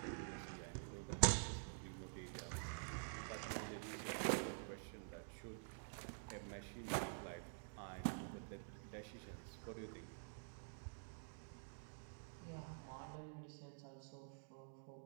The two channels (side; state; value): left; silent; digital silence